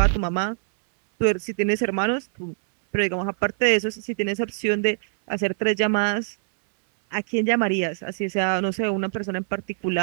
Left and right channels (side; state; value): left; silent; 63 dB below the other